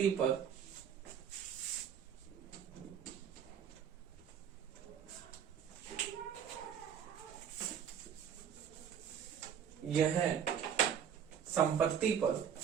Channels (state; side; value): quieter; left; 8.2 dB